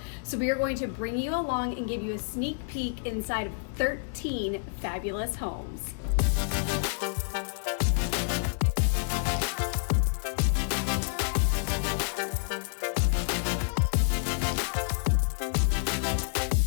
so we are going to bring you along and give you a sneak peek inside of 13 fabulous homes.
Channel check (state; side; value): silent; right; digital silence